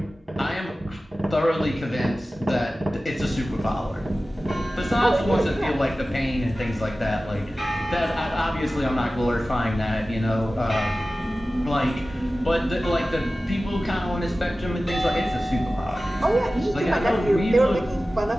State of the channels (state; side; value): normal; both; correlation 0.96